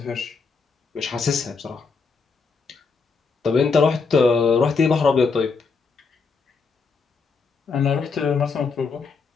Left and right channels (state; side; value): quieter; right; 4.9 dB